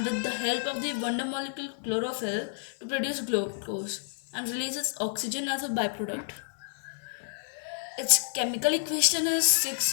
with the help of the wonder molecule chlorophyll to produce glucose and releases oxygen as a byproduct. Its chemical equation is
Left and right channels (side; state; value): right; silent; digital silence